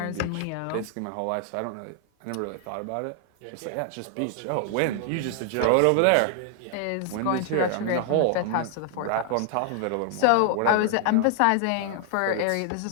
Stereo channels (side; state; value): both; different; correlation 0.00